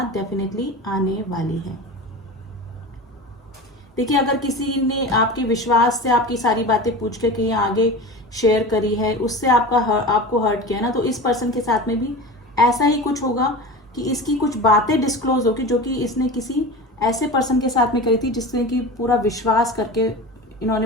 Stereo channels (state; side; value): normal; both; correlation 0.31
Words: डेफिनेटली आने वाली है। देखिए अगर किसी ने आपके विश्वास से आपकी सारी बातें पूछ के कहीं आगे शेयर करी है, उससे आपको हर्ट किया ना, तो इस पर्सन के साथ में भी ऐसा ही कुछ होगा कि इसकी कुछ बातें डिस्क्लोज होगी जो कि इसने किसी ऐसे पर्सन के साथ में करी थी जिसने कि पूरा विश्वास करके